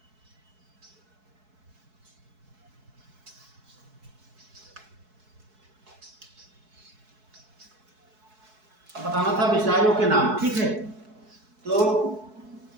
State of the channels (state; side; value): late; left; 4.7 ms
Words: बताना था मिसाइलों के नाम, ठीक है। तो